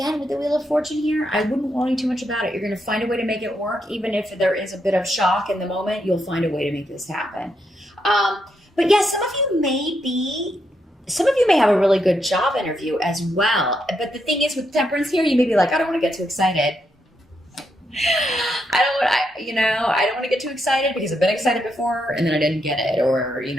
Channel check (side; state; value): both; normal; correlation 0.80